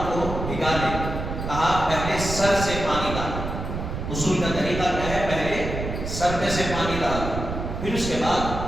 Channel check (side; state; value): right; noise; rumble, 5 dB below the sound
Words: کو بھگا لیں. کہا پہلے سر سے پانی ڈالیں. غسل کا طریقہ کیا ہے؟ پہلے سر پہ سے پانی ڈالیں، پھر اس کے بعد